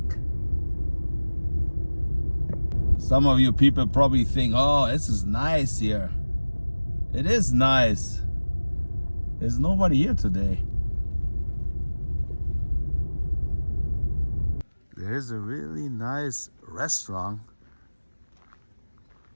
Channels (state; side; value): inverted; both; correlation -1.00